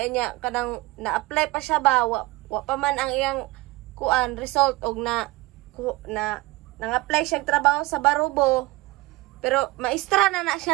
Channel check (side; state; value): left; quieter; 20.8 dB